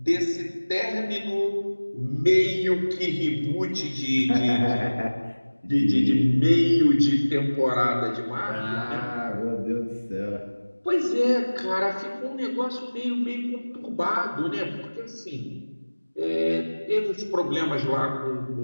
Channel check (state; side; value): inverted; both; correlation -1.00